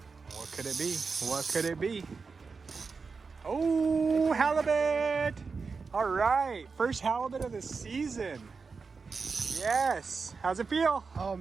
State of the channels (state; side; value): quieter; left; 4.8 dB